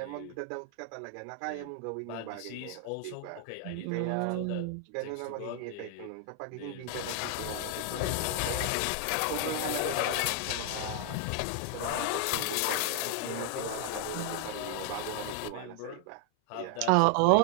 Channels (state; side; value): different; both; correlation 0.00